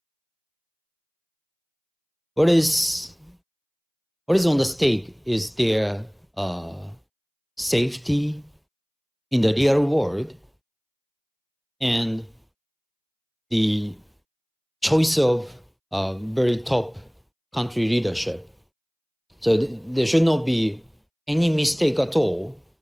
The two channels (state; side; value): identical; both; correlation 1.00